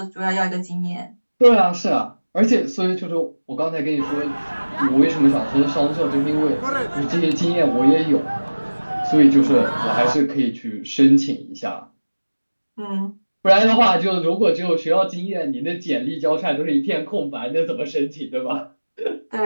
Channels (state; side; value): inverted; both; correlation -1.00